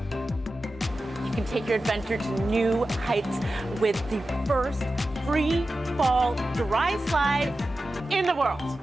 You can take your adventure to new heights with the first free fall dry slide in the world.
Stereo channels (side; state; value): both; normal; correlation 0.93